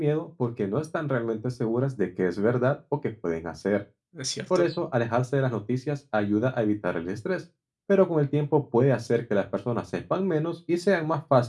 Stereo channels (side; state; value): both; identical; correlation 1.00